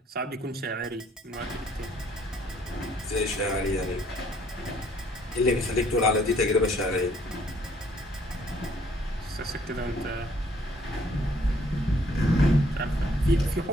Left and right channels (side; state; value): both; normal; correlation 0.63